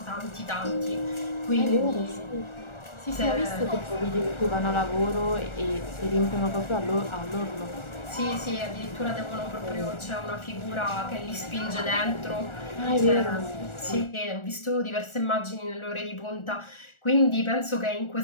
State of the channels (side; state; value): right; late; 1.4 ms